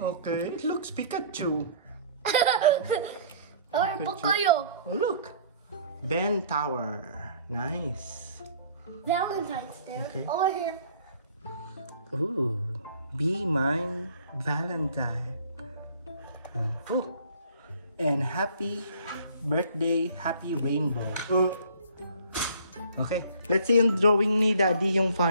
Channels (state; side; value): inverted; both; correlation -0.52